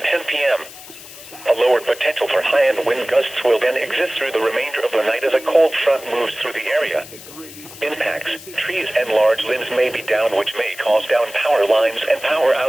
10 p.m. A lower potential for high-end wind gusts will then exist through the remainder of the night as a cold front moves through the area. Impacts, trees and large limbs may be down, which may cause down power lines and power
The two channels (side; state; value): left; noise; hiss, 16 dB below the sound